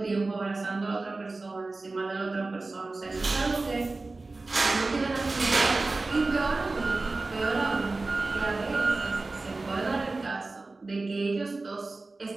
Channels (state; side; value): quieter; left; 3.4 dB